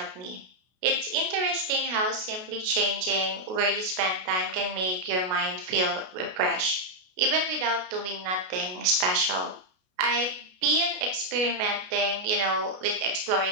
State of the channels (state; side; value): late; left; 33 ms